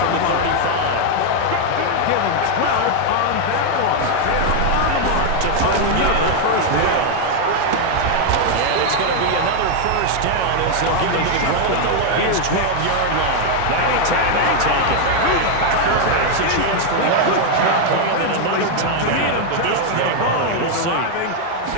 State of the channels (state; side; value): different; both; correlation 0.00